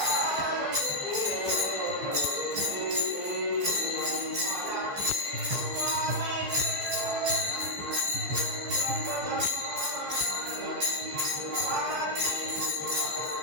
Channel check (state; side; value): late; left; 14 ms